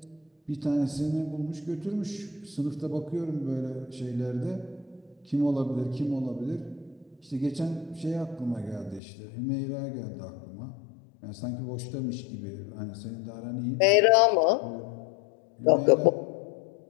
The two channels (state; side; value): drops out; right; at 9.0 s